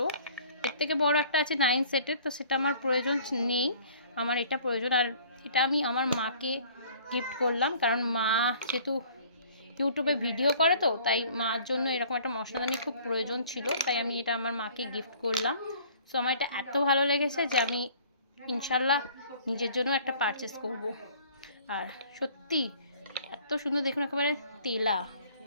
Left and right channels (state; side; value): inverted; both; correlation -0.53